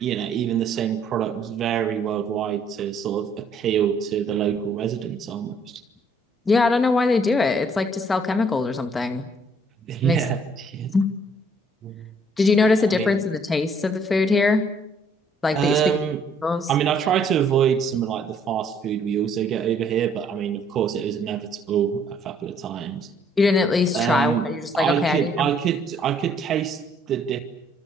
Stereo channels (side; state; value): both; normal; correlation 0.64